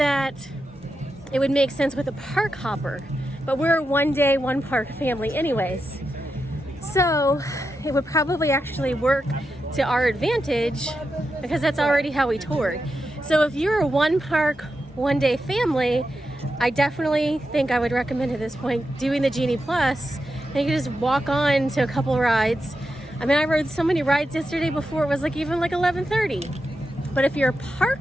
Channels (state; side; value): normal; both; correlation 0.88